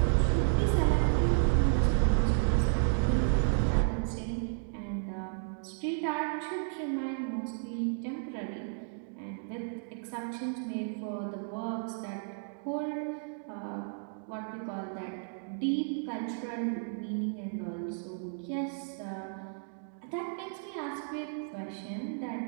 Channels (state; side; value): silent; left; digital silence